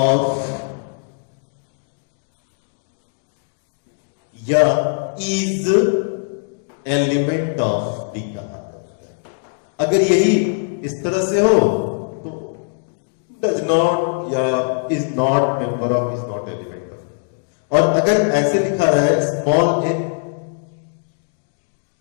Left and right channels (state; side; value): silent; right; digital silence